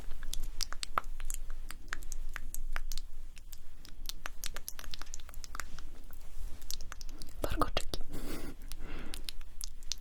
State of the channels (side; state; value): both; identical; correlation 1.00